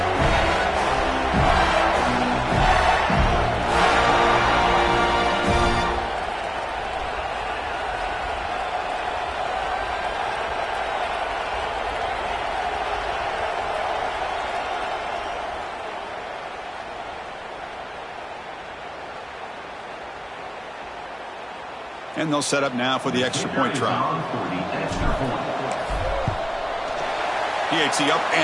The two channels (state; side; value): identical; both; correlation 1.00